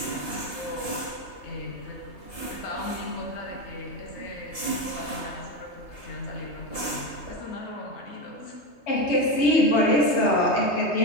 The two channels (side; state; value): right; late; 3.2 ms